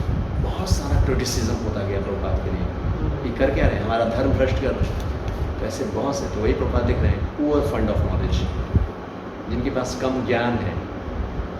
बहुत सारा क्रिटिसिज्म होता गया प्रभुपाद के लिए कि कर क्या रहे हैं, हमारा धर्म भ्रष्ट कर रहे हैं। तो ऐसे बहुत से, तो वही प्रभुपाद दिख रहे हैं, पुअर फंड ऑफ नॉलेज, जिनके पास कम ज्ञान है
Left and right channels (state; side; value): identical; both; correlation 1.00